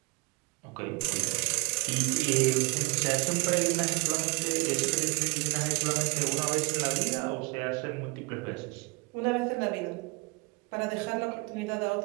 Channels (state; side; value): quieter; left; 28.4 dB